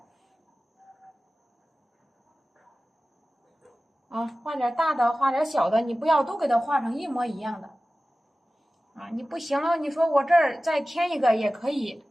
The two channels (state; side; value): normal; both; correlation 0.96